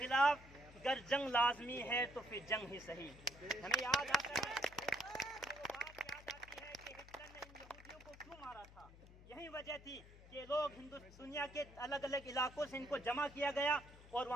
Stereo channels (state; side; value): noise; left; hum, 19 dB below the sound